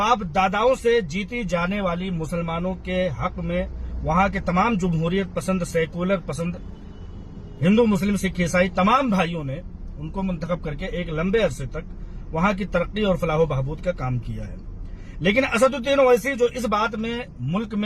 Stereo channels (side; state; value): both; identical; correlation 1.00